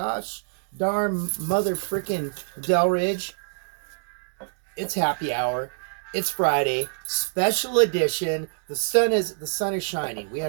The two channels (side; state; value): left; silent; digital silence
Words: darn mother frickin' Delridge. It's happy hour. It's Friday, special edition. The sun is shining. We